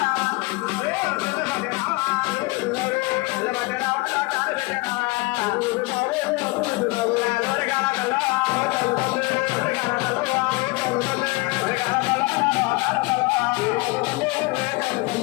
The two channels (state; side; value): quieter; right; 24.3 dB